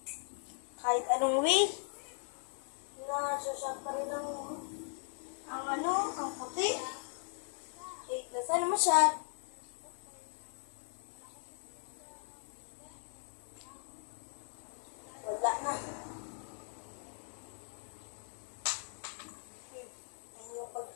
Kahit anong way, nasasyak pa rin ang puti. Sana masyad. Wala na. Ayun yung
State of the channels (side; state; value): right; silent; 52 dB below the other